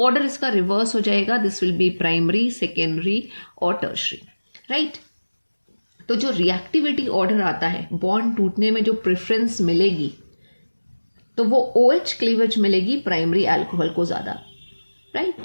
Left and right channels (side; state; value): both; inverted; correlation -1.00